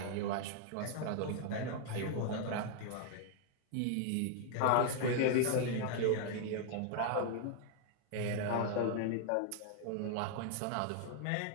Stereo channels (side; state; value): both; different; correlation 0.00